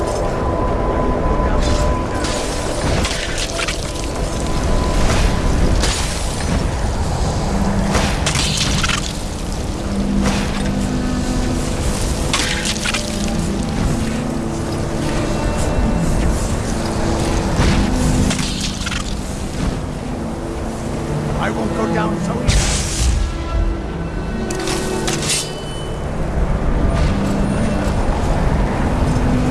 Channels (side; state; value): both; identical; correlation 1.00